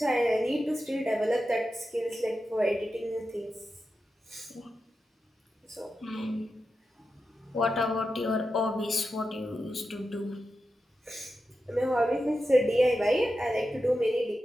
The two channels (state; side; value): normal; both; correlation 0.90